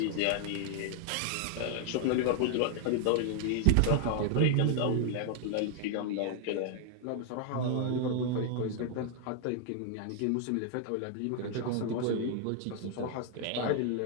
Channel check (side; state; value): both; different; correlation 0.00